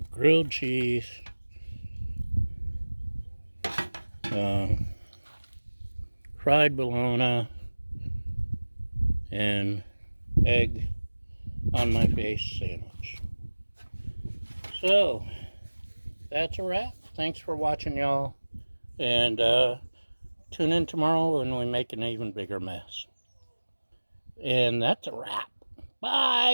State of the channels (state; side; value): inverted; both; correlation -1.00